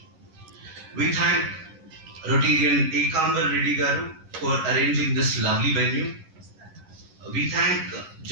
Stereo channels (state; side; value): late; left; 11 ms